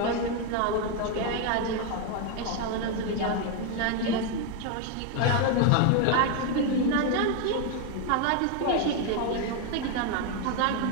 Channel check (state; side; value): different; both; correlation 0.01